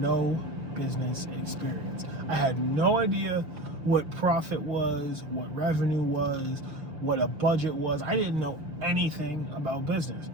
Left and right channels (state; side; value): late; left; 6.4 ms